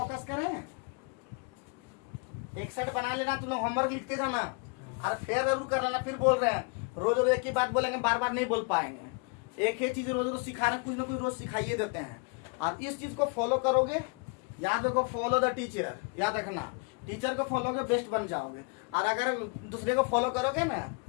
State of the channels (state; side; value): quieter; right; 33.8 dB